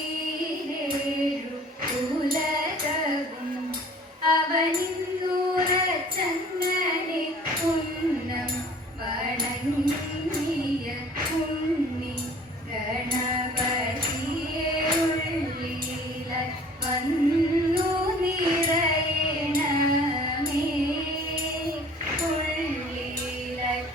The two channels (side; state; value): both; normal; correlation 0.49